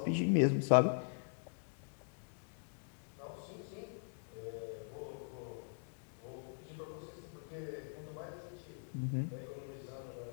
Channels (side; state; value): right; silent; digital silence